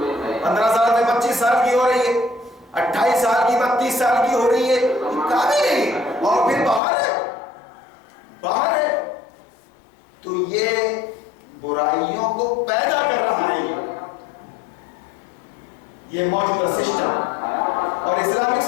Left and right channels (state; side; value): drops out; right; at 6.8 s